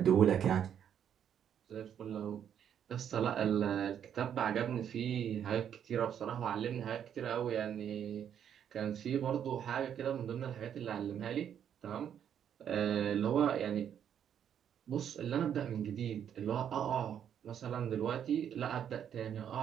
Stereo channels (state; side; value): quieter; left; 9.0 dB